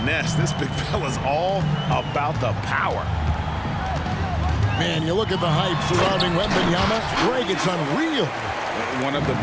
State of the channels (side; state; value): both; identical; correlation 1.00